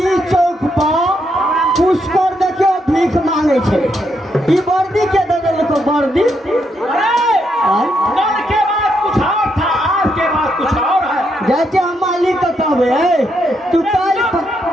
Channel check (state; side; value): normal; both; correlation 0.78